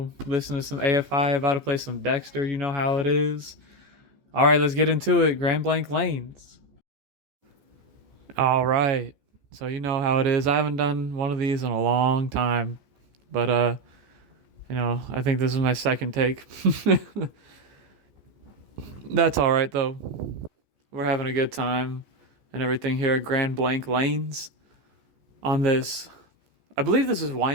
Listening to some AFI. About to play some Dexter. You know how it is. All right, let's get into it. Grand Blank Lanes. All right. So you know how it is. I haven't done one of these in a long time, but I think this is my second take. That's all right though. We're having a good time and everything here at Grand Blank Lanes on this. I believe this is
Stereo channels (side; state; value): left; late; 14 ms